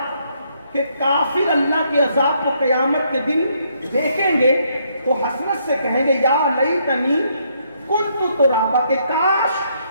کہ کافر اللہ کے عذاب کو قیامت کے دن دیکھیں گے تو حسرت سے کہیں گے یا لیتنی کنت ترابا، کہ کاش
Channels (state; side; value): inverted; both; correlation -0.72